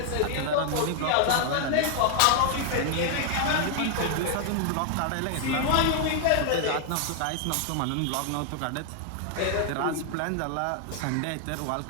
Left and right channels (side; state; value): both; different; correlation 0.00